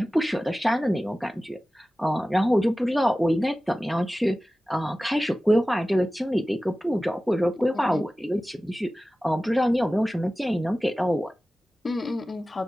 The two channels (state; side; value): normal; both; correlation 0.96